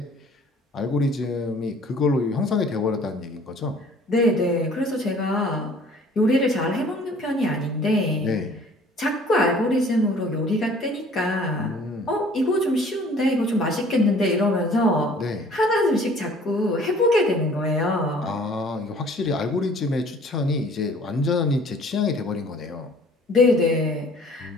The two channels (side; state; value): both; normal; correlation 0.53